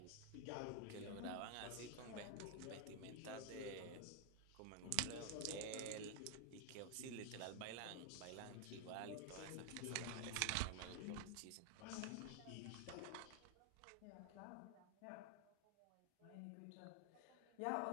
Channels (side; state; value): both; different; correlation 0.00